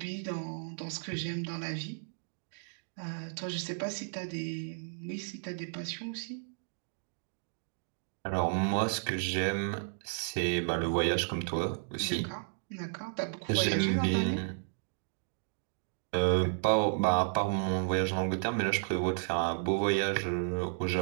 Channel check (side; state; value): left; silent; digital silence